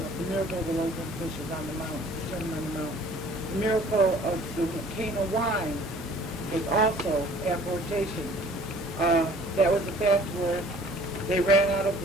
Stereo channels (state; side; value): normal; both; correlation 0.52